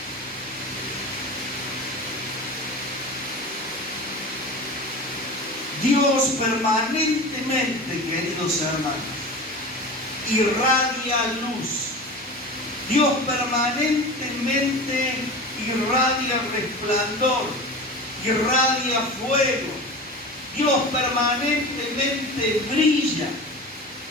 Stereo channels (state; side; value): normal; both; correlation 0.32